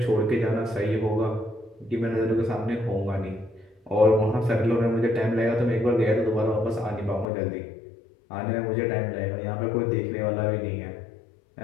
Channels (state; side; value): drops out; right; at 7.2 s